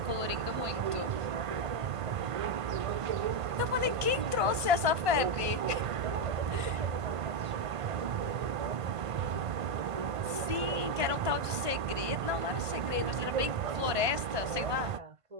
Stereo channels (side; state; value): left; late; 1.5 ms